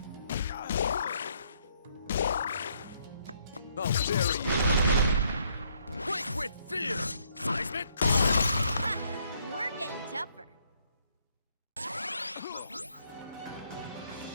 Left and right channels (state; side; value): inverted; both; correlation -0.69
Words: I'll bury you! Quake with fear! Seismic! We're getting tougher.